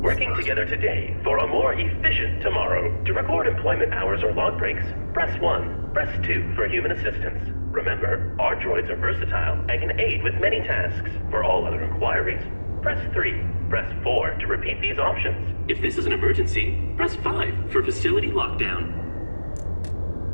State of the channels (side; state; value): both; inverted; correlation -1.00